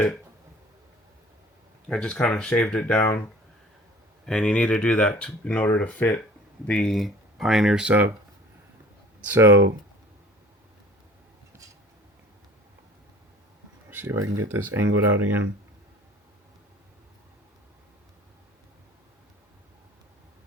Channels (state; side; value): normal; both; correlation 0.48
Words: I just kind of shaved it down. And you need to do that in order to fit the Pioneer sub. So, see if I can get this angled out again.